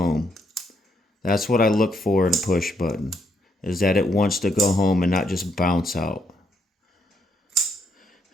That's what I look for in a push button, is that it wants to go home and not just bounce out.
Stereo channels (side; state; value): both; normal; correlation 0.75